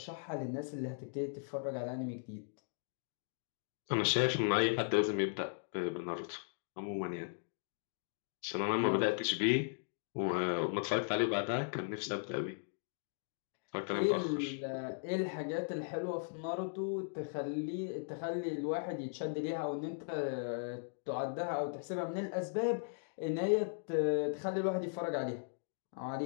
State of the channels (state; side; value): silent; right; digital silence